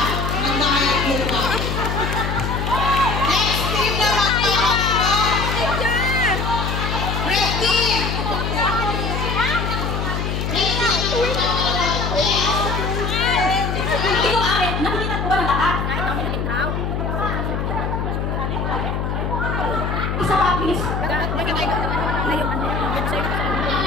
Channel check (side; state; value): left; noise; hum, 1 dB below the sound